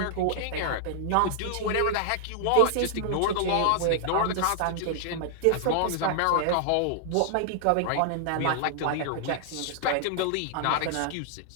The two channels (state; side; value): different; both; correlation -0.01